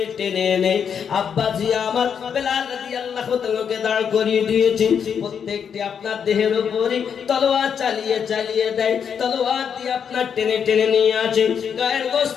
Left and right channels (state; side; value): quieter; right; 7.4 dB